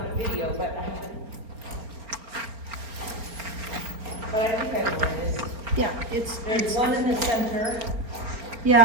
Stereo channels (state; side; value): late; left; 4.4 ms